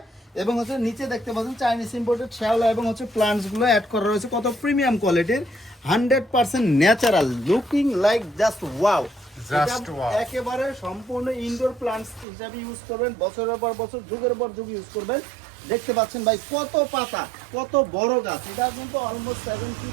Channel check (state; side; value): drops out; left; at 12.2 s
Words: এবং হচ্ছে নিচে দেখতে পাচ্ছেন চাইনিজ ইম্পোর্টেড শ্যাওলা এবং হচ্ছে প্লান্টস গুলো অ্যাড করা রয়েছে, কত প্রিমিয়াম কোয়ালিটির, 100% natural, looking like just wow. Just wow। একেবারে সম্পূর্ণ ইনডোর প্লান্টস হিসাবে ইউজ করবেন, বছরের পর বছর যুগের পর যুগ ইউজ করবেন। দেখতে পাচ্ছেন ভাই কত পাতা, কত বড় গাছ। এটা কিন্তু অলমোস্ট 7